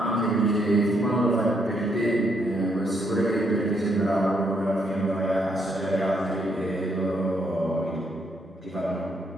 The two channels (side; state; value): both; normal; correlation 0.74